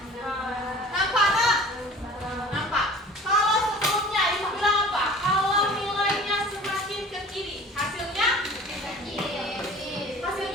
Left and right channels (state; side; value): normal; both; correlation 0.44